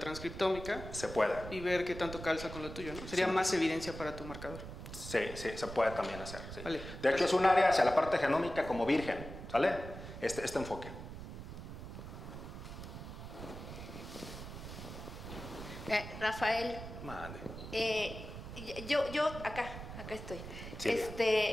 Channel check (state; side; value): noise; right; rumble, 10 dB below the sound